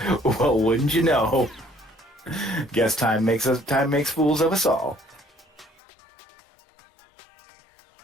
Well, wouldn't you know? Guess time makes fools of us all.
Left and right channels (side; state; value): right; drops out; at 5.8 s